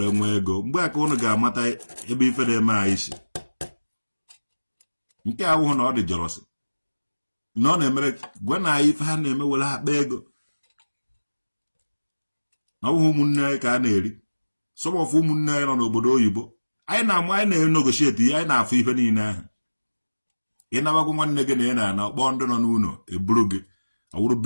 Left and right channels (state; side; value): inverted; both; correlation -1.00